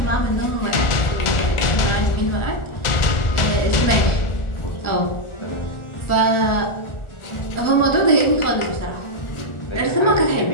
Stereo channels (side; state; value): right; late; 1.4 ms